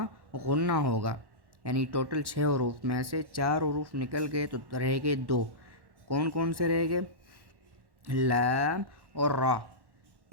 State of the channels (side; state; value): left; late; 1.1 ms